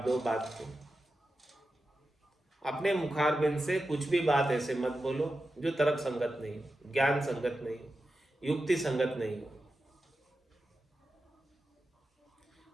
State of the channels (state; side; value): normal; both; correlation 0.91